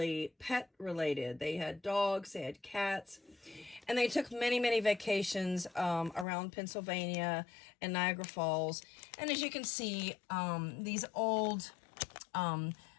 pet related. They had dogs, they had cats, and they took many, many vacations around Pennsylvania and Niagara Falls. And as you can see, these old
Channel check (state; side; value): drops out; right; at 6.2 s